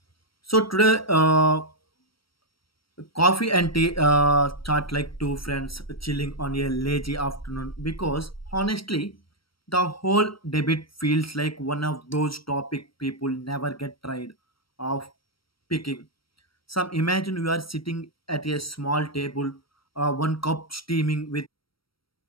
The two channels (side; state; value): right; late; 0.75 ms